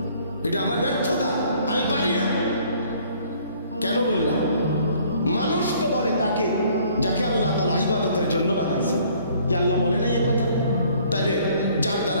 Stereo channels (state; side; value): inverted; both; correlation -0.59